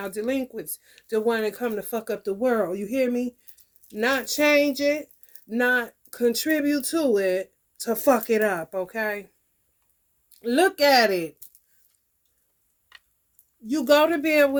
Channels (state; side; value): identical; both; correlation 1.00